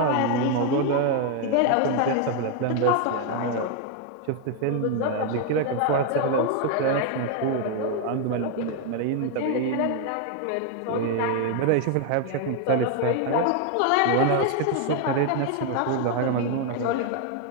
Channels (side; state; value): both; different; correlation 0.00